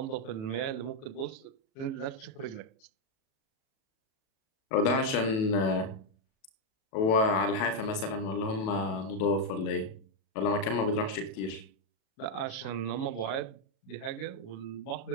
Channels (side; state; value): right; late; 37 ms